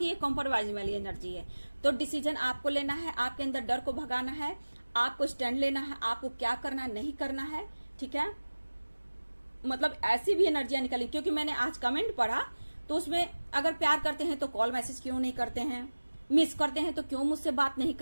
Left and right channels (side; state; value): both; inverted; correlation -1.00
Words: ये कॉम्प्रोमाइज वाली एनर्जी है, तो डिसीजन आपको लेना है, आपके अंदर डर को भगाना है, आपको स्टैंड लेना है, आपको क्या करना नहीं करना है। ठीक है, मतलब ऐसी भी एनर्जियां निकली, क्योंकि मैंने आज कमेंट पढ़ा तो उसमें अगर प्यार करते हैं तो कॉल मैसेज क्यों नहीं करते हैं, मिस करते हैं तो क्यों मुझसे बात नहीं